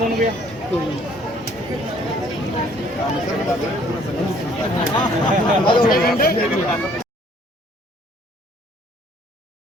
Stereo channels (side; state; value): both; normal; correlation 0.60